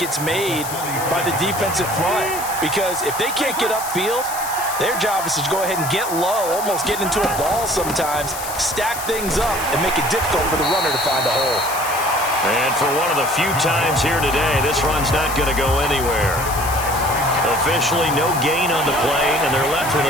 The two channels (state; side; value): noise; left; hiss, 8 dB below the sound